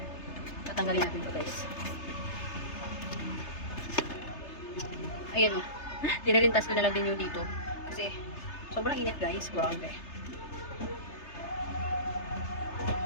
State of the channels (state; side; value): late; right; 3.3 ms